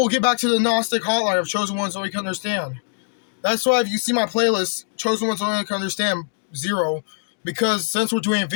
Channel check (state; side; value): silent; right; digital silence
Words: get back to the Gnostic hotline of chosen ones so we can understand. That's why if you see my playlist, chosen ones only can understand 0, because since we're doing